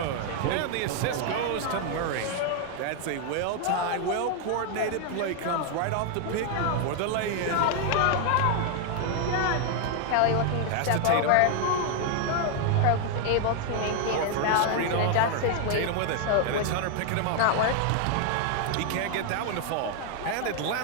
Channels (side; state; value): both; different; correlation 0.00